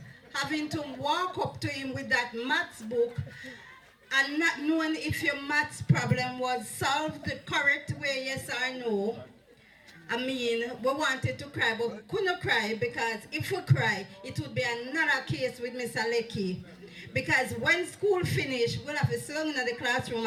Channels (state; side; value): identical; both; correlation 1.00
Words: having to walk up to him with that maths book and not knowing if your maths problem was solved the correct way, yes or no. I mean, we wanted to cry, but we couldn't cry because if we cry, it would be another case with Mr. Lecky. Because when school finished, we'll have to sit down in the classroom